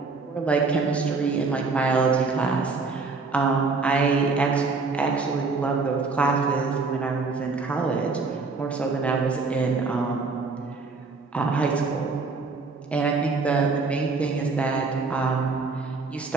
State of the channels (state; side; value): quieter; left; 4.2 dB